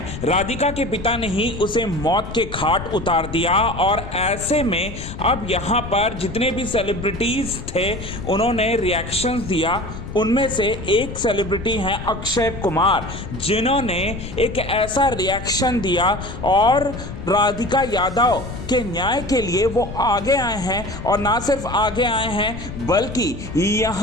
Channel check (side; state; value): left; noise; rumble, 10 dB below the sound